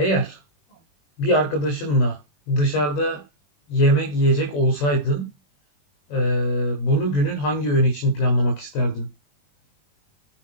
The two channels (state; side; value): late; right; 21 ms